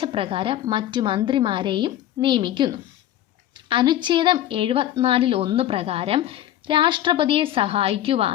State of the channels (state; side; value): quieter; right; 12.5 dB